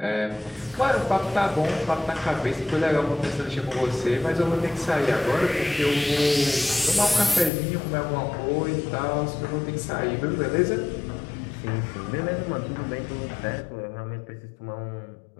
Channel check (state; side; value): drops out; right; at 7.5 s